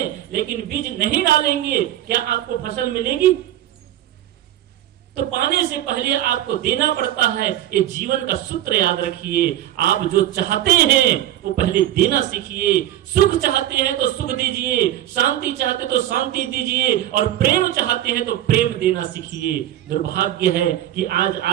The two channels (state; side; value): quieter; left; 12.7 dB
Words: लेकिन बीज नहीं डालेंगे, क्या आपको फसल मिलेगी? तो पाने से पहले आपको देना पड़ता है। ये जीवन का सूत्र याद रखिए। आप जो चाहते हैं वो पहले देना सीखिए। सुख चाहते हैं तो सुख दीजिए, शांति चाहते तो शांति दीजिए, और प्रेम चाहते हैं तो प्रेम देना सीखिए। दुर्भाग्य है कि आज